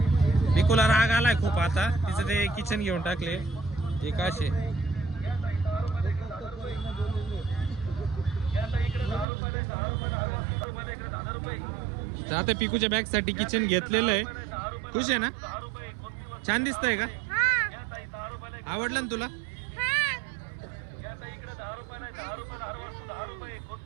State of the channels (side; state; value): left; drops out; at 9.2 s